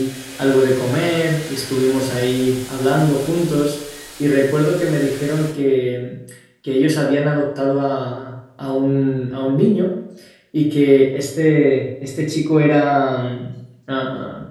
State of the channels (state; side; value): identical; both; correlation 1.00